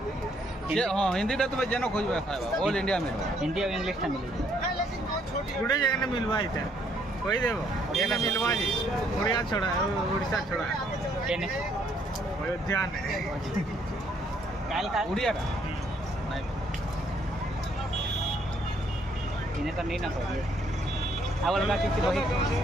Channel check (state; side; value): normal; both; correlation 0.68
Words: ये हां हिंदीटा तो जेनो खोजबे खाइबा ऑल इंडिया में हिंदी और इंग्लिश ता मिले गुडे जगह ने मिलवा इते कोई देबो ये ना मिलवा जी ओडिया छोड़ा ओडिसा छोड़ा केने अयोध्या ने काल का उड़िया का नहीं इने तो नहीं ना खोजे आवल का किसी बही